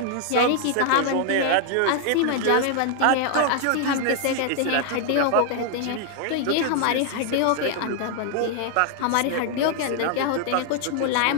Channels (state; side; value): different; both; correlation 0.00